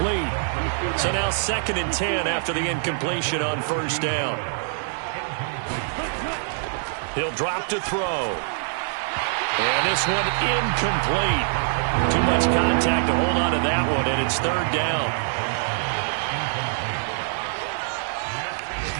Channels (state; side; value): silent; left; digital silence